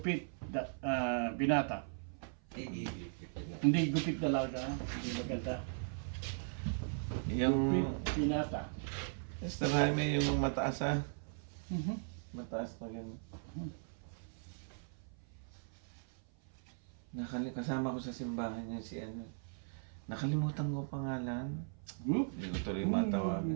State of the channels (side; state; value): left; silent; 52 dB below the other